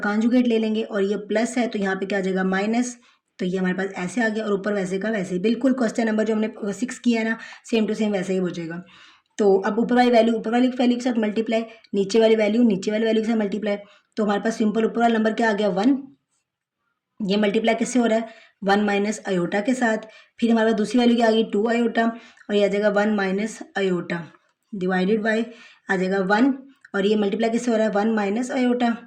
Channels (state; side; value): identical; both; correlation 1.00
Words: ले लेंगे, और ये प्लस है तो यहाँ पे क्या आ जाएगा माइनस, तो ये हमारे पास ऐसे आ गया, और ऊपर वैसे का वैसे ही बिल्कुल क्वेश्चन नंबर जो हमने 6 किया है ना, सेम टू सेम वैसे ही हो जाएगा। तो अब ऊपर वाली वैल्यू के साथ मल्टीप्लाई, नीचे वाली वैल्यू के साथ मल्टीप्लाई, तो हमारे पास सिंपल ऊपर वाला नंबर क्या आ गया 1। ये मल्टीप्लाई किससे हो रहा है 1 माइनस अयोटा के साथ। फिर हमारे पास दूसरी वैल्यू क्या आ गई 2 अयोटा, और ये आ जाएगा 1 माइनस अयोटा डिवाइडेड बाई आ जाएगा 1, और ये मल्टीप्लाई किससे हो रहा है 1 माइनस अयोटा,